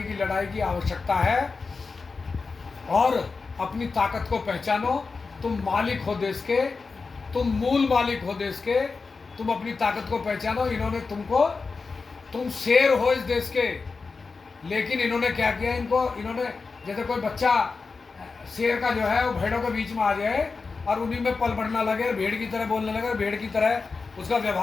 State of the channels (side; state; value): right; quieter; 4.5 dB